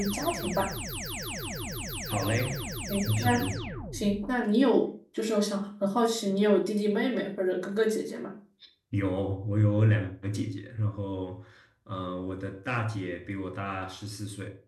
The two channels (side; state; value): both; identical; correlation 1.00